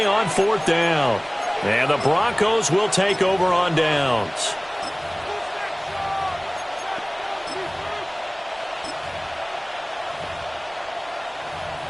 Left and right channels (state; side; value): noise; right; rumble, 27 dB below the sound